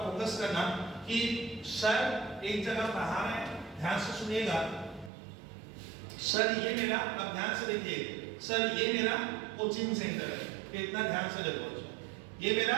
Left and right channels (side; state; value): left; drops out; at 5.1 s